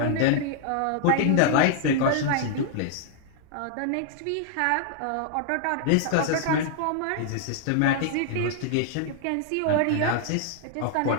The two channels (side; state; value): both; different; correlation -0.01